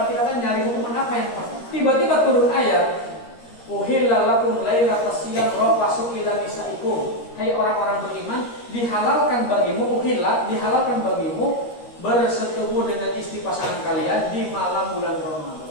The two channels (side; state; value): right; late; 13 ms